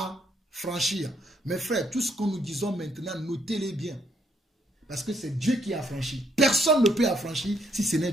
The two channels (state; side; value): normal; both; correlation 0.71